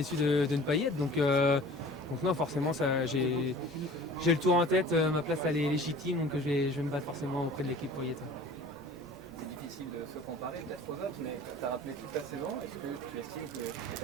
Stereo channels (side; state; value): both; normal; correlation 0.44